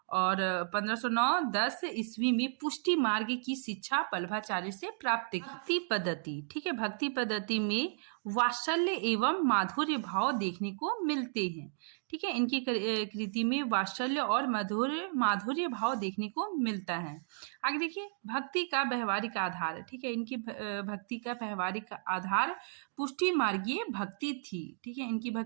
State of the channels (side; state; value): left; silent; digital silence